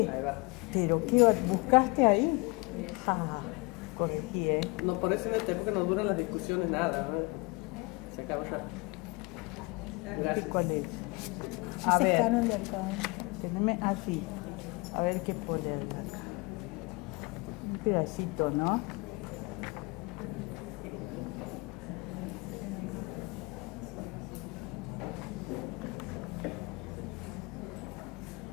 Ahí va. Pero ¿qué buscaste ahí? Ah, corregí, ¿eh? No, por eso en esta época no duran las discusiones nada, ¿no? Se acaba ya. Gracias. ¿Cuál es? Ese A es ver, Canon de Alcoba. teneme así. A ver qué poner acá. Un pedacito, ¿no?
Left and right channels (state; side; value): quieter; right; 27.1 dB